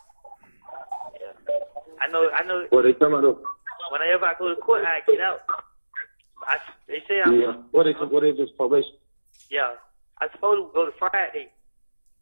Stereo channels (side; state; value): both; inverted; correlation -1.00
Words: Yeah. I know. Well, they come out of. Whenever I go to court, I get out. They say I'm. Yeah. What they just probation? Yeah. I supposed to go to Friday,